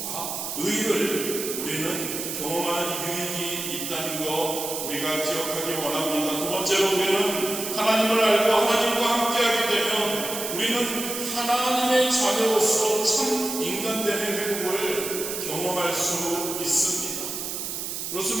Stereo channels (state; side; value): noise; right; hiss, 5 dB below the sound